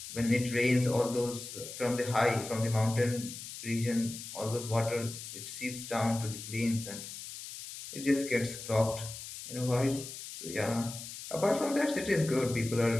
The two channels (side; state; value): left; noise; hiss, 10 dB below the sound